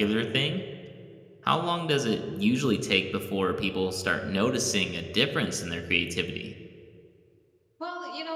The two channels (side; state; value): both; identical; correlation 1.00